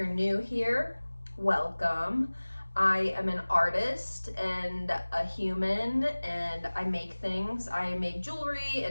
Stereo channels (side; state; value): both; inverted; correlation -1.00